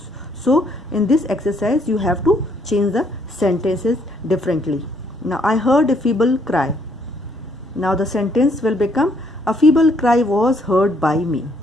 So in this exercise you have to change the sentences differently. Now I heard a feeble cry. Now the sentence will become a feeble cry was heard by me.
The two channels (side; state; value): both; normal; correlation 0.68